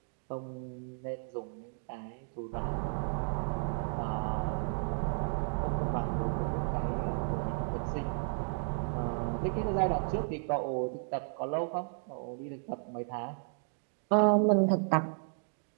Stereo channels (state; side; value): silent; left; 55 dB below the other